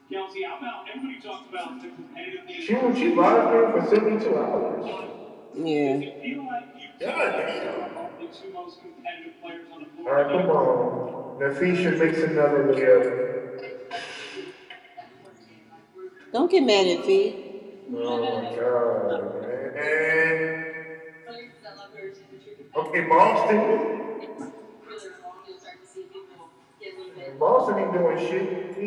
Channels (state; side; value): identical; both; correlation 1.00